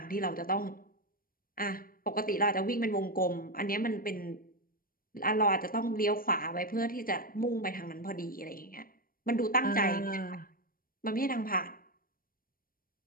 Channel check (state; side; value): late; right; 0.41 ms